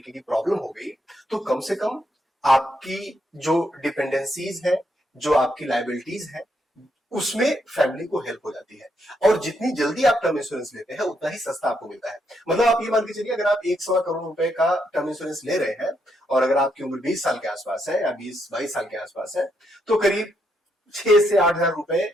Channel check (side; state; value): both; normal; correlation 0.77